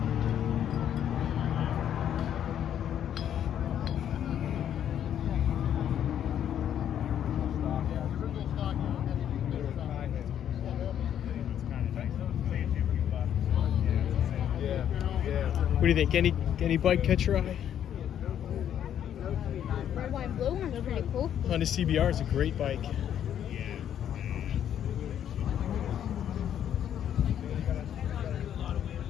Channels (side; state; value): right; quieter; 9.9 dB